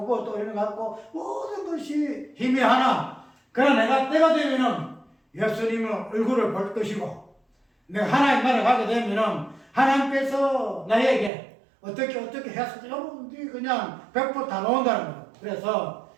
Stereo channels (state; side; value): drops out; left; at 11.3 s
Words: 그것도 어린아이 같고 모든 것이 희미하나 그러나 내가 때가 되면은 예수님의 얼굴을 볼 것이고 내가 하나님 나라에 가게 되면은 하나님께서 나에게 어떻게 해서 여러분들이 그냥 100% 다 나온다는 거예요. 그래서